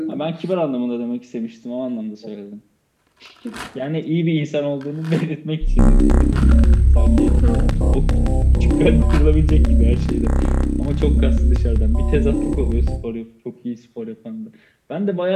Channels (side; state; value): both; identical; correlation 1.00